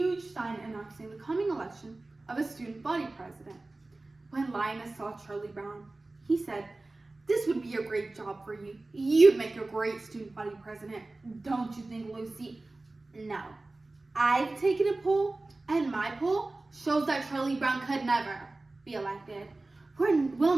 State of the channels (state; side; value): quieter; left; 3.1 dB